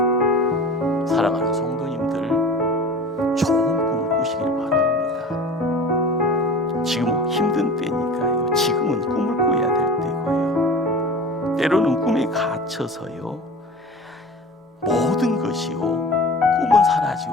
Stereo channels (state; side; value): normal; both; correlation 0.38